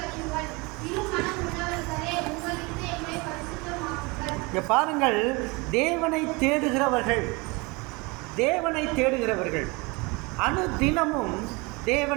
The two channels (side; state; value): left; quieter; 26.4 dB